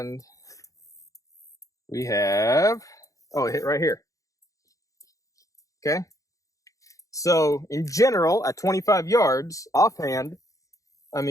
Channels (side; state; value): right; late; 0.16 ms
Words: we have, a hit right here. Okay. So in general, at 25 yards, offhand, I